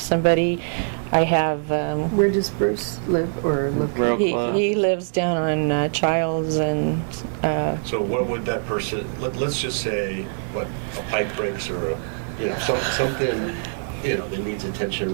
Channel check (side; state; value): left; silent; digital silence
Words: I have. Where does Bruce live or look? Real He close. lives down on Childs and. So what would that person, let's just say, a pipe breaks or something, that needs attention